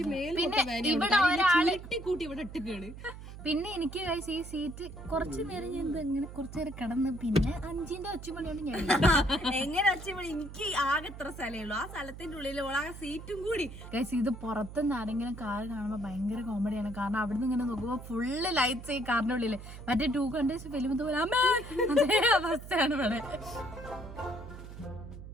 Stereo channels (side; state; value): right; noise; hum, 13 dB below the sound